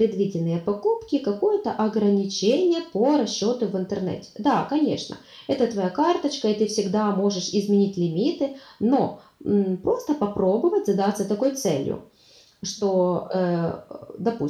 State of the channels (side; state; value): both; identical; correlation 1.00